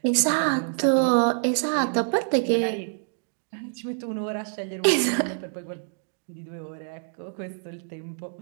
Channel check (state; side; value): silent; left; digital silence